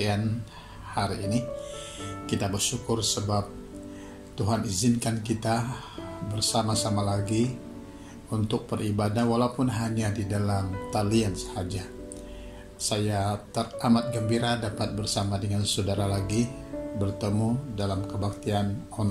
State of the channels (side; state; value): both; identical; correlation 1.00